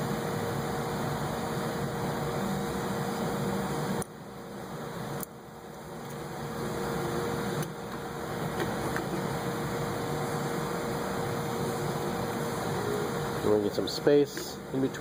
We're going to get some space in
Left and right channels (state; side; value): identical; both; correlation 1.00